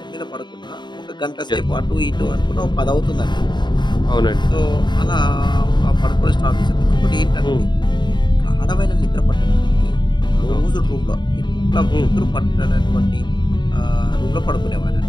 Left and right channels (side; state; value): right; late; 0.22 ms